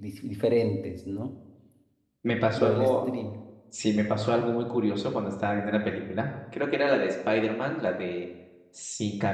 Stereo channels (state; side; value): identical; both; correlation 1.00